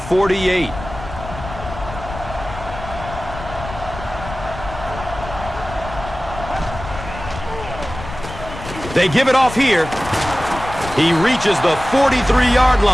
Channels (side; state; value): left; noise; rumble, 11 dB below the sound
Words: They give it off here. He reaches the 43-yard